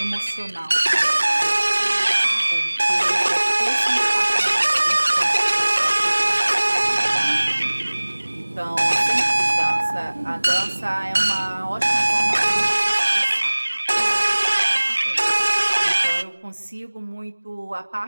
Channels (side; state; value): both; inverted; correlation -1.00